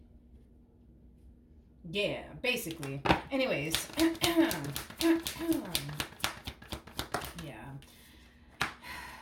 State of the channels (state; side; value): identical; both; correlation 1.00